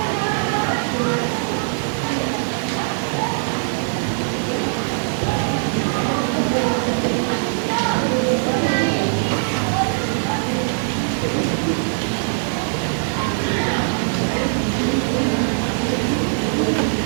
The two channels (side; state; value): left; silent; digital silence